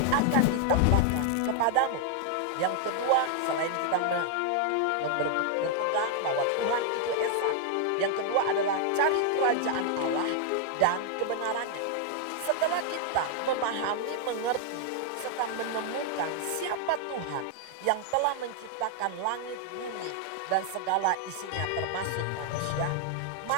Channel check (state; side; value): different; both; correlation 0.00